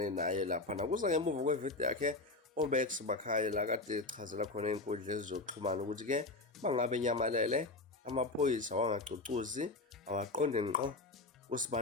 naye lapha nakuza ngemuva kwevideo yakhe uMax Makhanya la kade echazela khona inkundla ezokuxhumana ukuthi ke bangabe nyamalele amaphoyisa wangacucuzi awaqonde ngqo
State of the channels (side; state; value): right; quieter; 3.2 dB